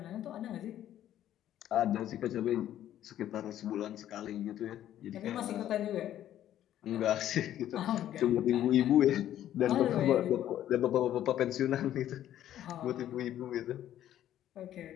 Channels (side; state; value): right; quieter; 11.9 dB